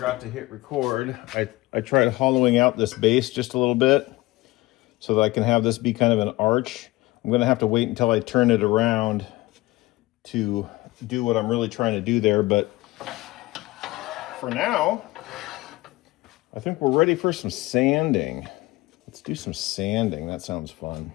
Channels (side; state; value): right; quieter; 19.8 dB